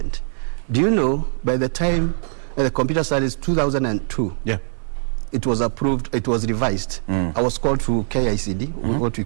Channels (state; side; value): silent; left; digital silence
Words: Do you know, by the time the computer studies 2002, it was approved, it was revised. I was called to KICD, what